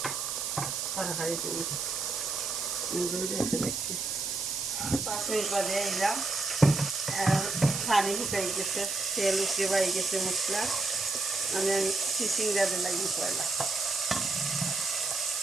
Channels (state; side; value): noise; right; hiss, 2 dB below the sound